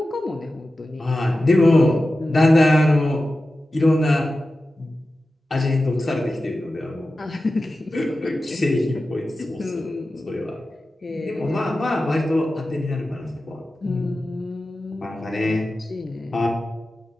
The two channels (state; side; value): normal; both; correlation 0.94